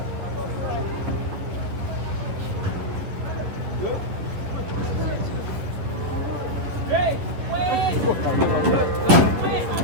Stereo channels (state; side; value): late; left; 10 ms